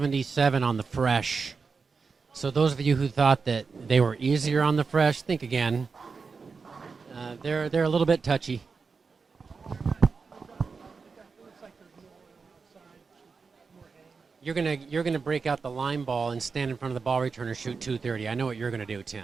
on the fresh. So those of you who thought that they were easier on the fresh, think again. They're a little bit touchy. You're gonna break out the line ball and stand in front of the ball returner, shoot 230. I know what you're gonna do,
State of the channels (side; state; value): left; quieter; 4.9 dB